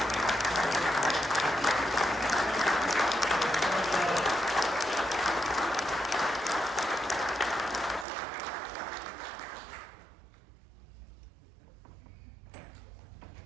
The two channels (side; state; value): left; drops out; at 8.1 s